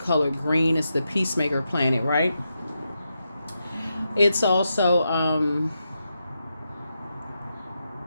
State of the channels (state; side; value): inverted; both; correlation -0.86